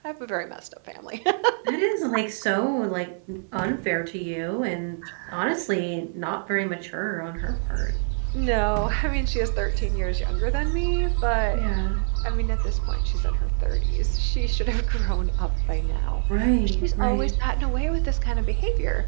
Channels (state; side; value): silent; left; 60 dB below the other